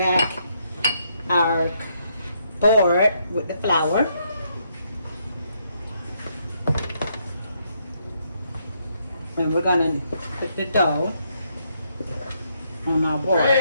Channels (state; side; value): inverted; both; correlation -0.75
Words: our board with the flour. And we're gonna put the dough on our board.